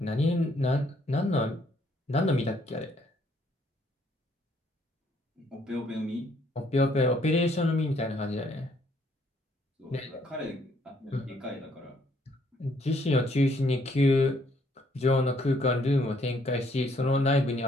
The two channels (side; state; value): both; normal; correlation 0.67